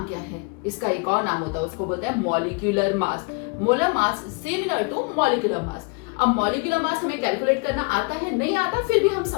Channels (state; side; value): quieter; right; 31.9 dB